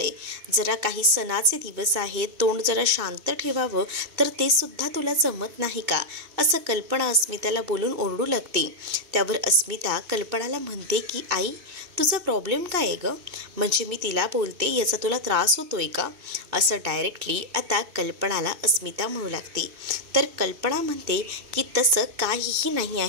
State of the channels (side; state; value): left; late; 2.7 ms